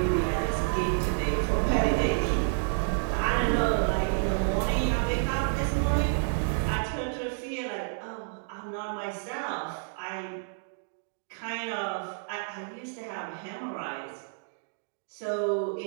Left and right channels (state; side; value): silent; left; digital silence